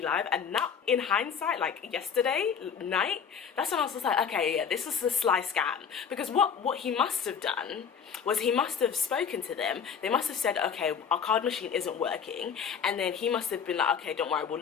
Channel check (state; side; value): quieter; right; 7.0 dB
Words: live, and now in hindsight, like yesterday night, that's when I was just like, okay, yeah, this is a sly scam. Because what he must have done was he must have spoken to them. They must have said, okay, our card machine isn't working. And then he must have been like, okay, don't worry, we'll